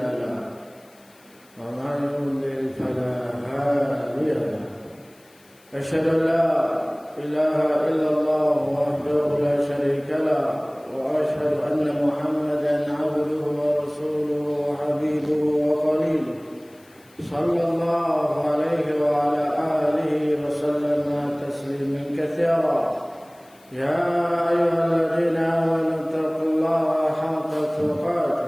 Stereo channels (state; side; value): noise; left; hiss, 29 dB below the sound